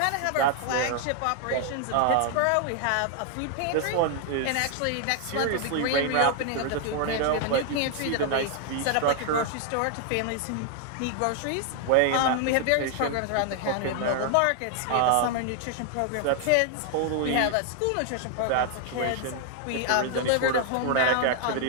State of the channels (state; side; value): different; both; correlation 0.00